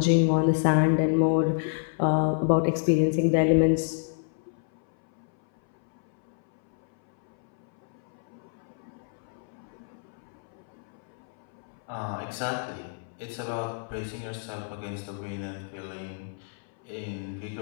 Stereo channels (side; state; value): right; silent; 59 dB below the other